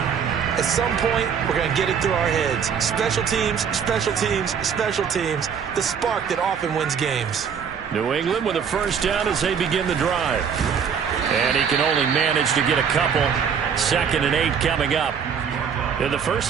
At some point, we're going to get it through our heads. Special teams, special teams, special teams. The spark that often wins games. New England with a first down as they begin the drive. And he can only manage to get a couple. 2nd and 8 coming up. In the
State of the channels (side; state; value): left; quieter; 7.1 dB